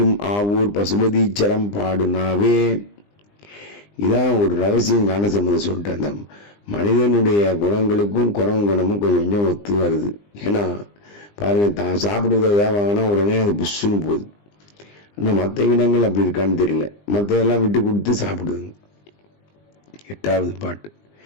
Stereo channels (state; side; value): late; right; 20 ms